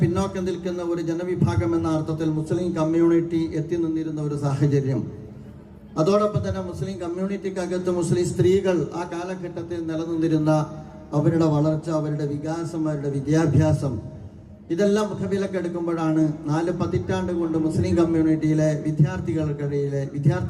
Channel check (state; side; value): identical; both; correlation 1.00